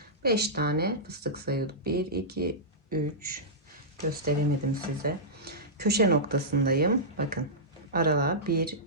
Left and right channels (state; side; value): normal; both; correlation -0.15